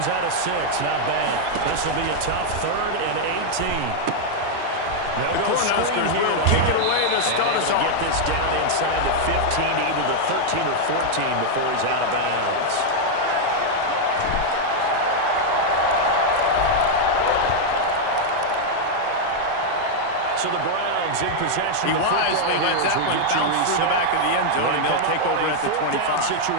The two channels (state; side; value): different; both; correlation 0.00